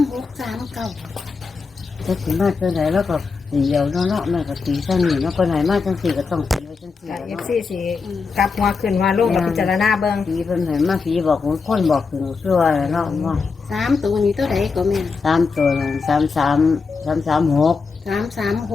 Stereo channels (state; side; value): quieter; right; 4.8 dB